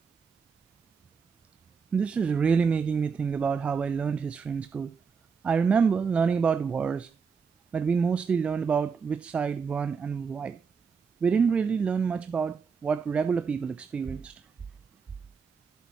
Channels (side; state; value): left; quieter; 5.7 dB